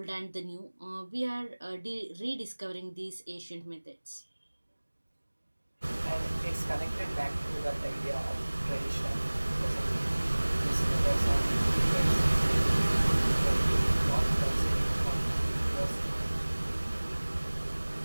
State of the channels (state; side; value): inverted; both; correlation -1.00